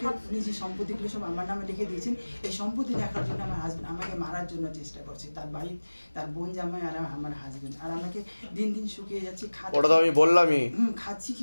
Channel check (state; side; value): inverted; both; correlation -1.00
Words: উনি যে সম্পত্তিগুলো সব আমার নামে লিখে দিয়েছেন, এই সম্পত্তি দেখার জন্য আমার হাজবেন্ড আমাকে মারার জন্য চেষ্টা করছে। তার বাড়ি, তার বোন জামাই আর আমার হাজবেন্ড, আর আমাকে দিন দিন শুকিয়ে যাচ্ছি, ওটা তো আমি বললামই। খাচ্ছি,